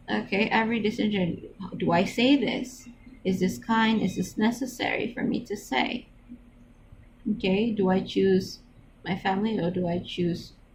Okay, every decision, do I say this? Is this kind? Is this necessary for me to say? Okay, do I choose my family or do I choose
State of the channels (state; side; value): identical; both; correlation 1.00